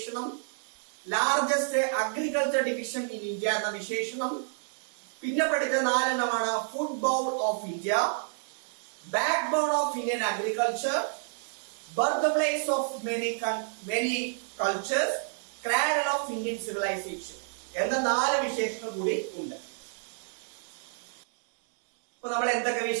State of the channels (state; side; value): silent; left; digital silence